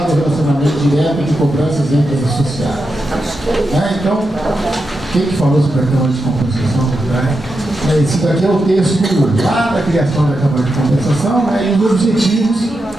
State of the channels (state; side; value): normal; both; correlation 0.87